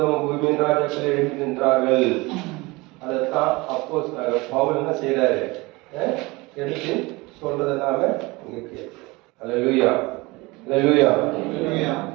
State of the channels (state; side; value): quieter; left; 23.4 dB